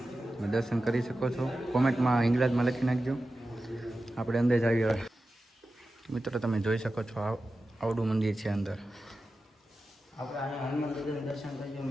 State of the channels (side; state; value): both; normal; correlation 0.93